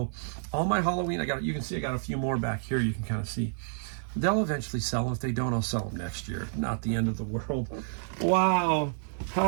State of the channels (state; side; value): silent; left; digital silence